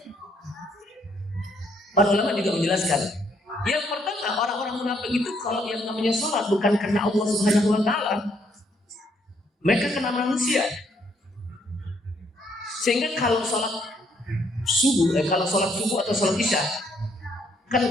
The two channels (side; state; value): both; normal; correlation 0.70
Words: Para ulama juga menjelaskan, yang pertama, orang-orang munafik itu kalau yang namanya sholat bukan karena Allah Subhanahu wa taala, mereka karena manusia. Sehingga kalau sholat subuh atau sholat isya, kan